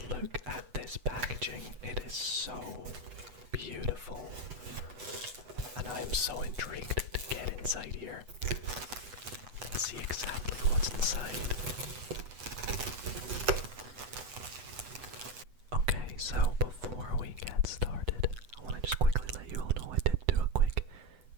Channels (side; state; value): left; late; 8.1 ms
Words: look at this packaging. It is so beautiful, and I am so intrigued to get inside here and see exactly what's inside. Okay, so before we get started, I want to just quickly let you all know I did do a quick